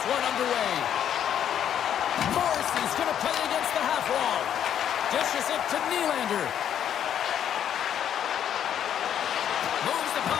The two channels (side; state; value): right; quieter; 9.7 dB